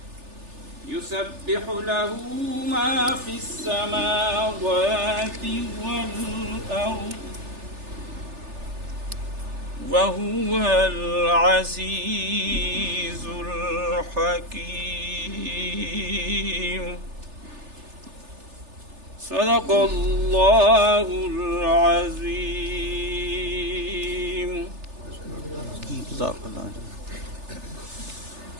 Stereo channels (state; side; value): late; left; 3.4 ms